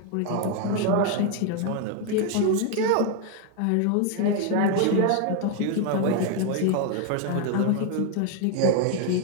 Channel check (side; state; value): both; different; correlation 0.00